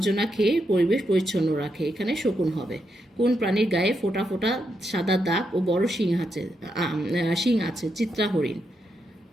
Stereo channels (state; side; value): normal; both; correlation 0.82